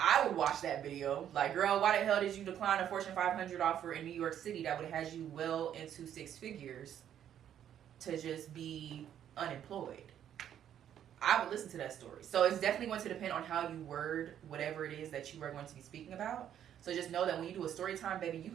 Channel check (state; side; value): quieter; left; 10.1 dB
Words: would watch that video. Like, girl, why the hell did you decline a Fortune 500 offer in New York City that would have had you well into 6 figures to just be unemployed? I would listen to that story. So it's definitely going to depend on how you word whatever it is that you are going to be speaking about. So just know that when you do a story time, baby, you